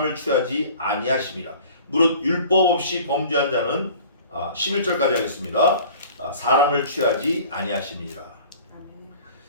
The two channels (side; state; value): both; inverted; correlation -0.46